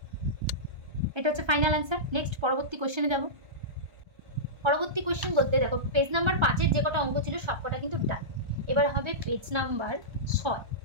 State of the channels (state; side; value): late; left; 1.3 ms